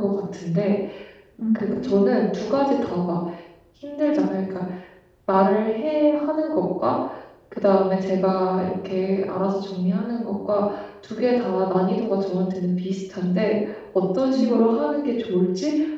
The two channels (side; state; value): both; identical; correlation 1.00